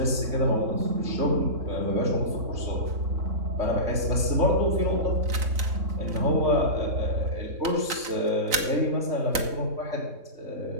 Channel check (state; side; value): late; left; 3.8 ms